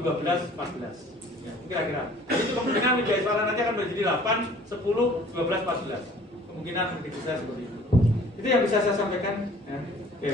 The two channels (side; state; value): both; normal; correlation 0.52